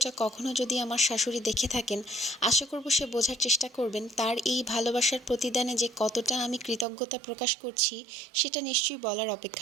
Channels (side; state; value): left; drops out; at 6.9 s